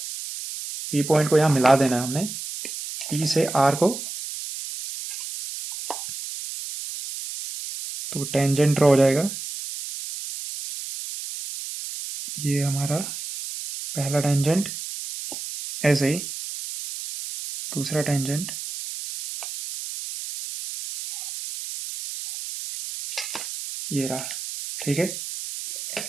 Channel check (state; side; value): noise; right; hiss, 8 dB below the sound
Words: पी पॉइंट को यहां मिला देना है हमने, पी से आर को। तो टेंजेंट ड्रॉ हो जाएगा, ये हमारा पहला टेंजेंट, ऐसे ही दूसरा टेंजेंट, ये रहा। ठीक है,